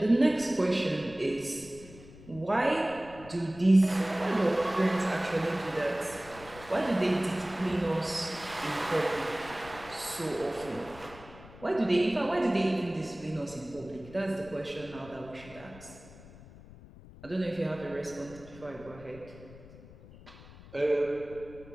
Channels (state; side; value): noise; left; rumble, 19 dB below the sound